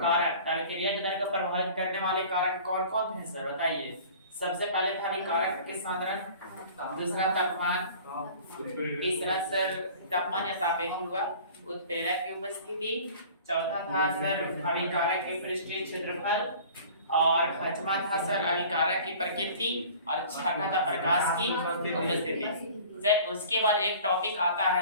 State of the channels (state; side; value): inverted; both; correlation -0.45